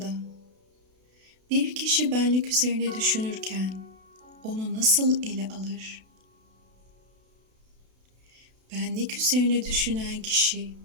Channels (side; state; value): left; late; 32 ms